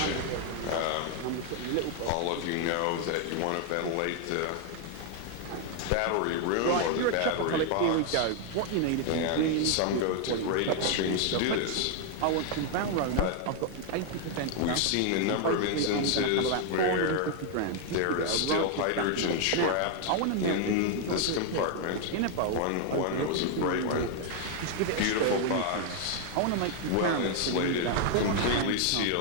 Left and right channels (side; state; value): both; different; correlation 0.00